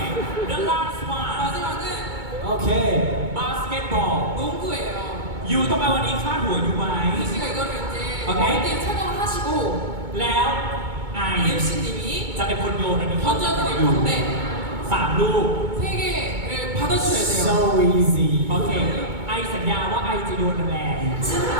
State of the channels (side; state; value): left; late; 2.2 ms